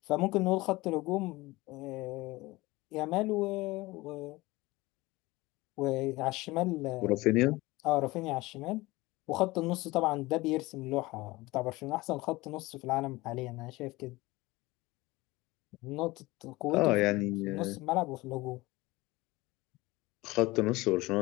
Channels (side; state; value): right; quieter; 20.7 dB